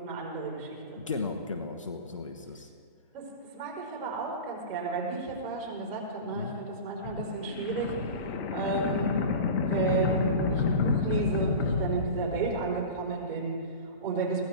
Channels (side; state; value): both; inverted; correlation -0.30